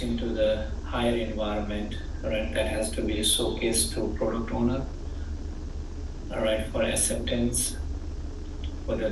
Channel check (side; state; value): both; identical; correlation 1.00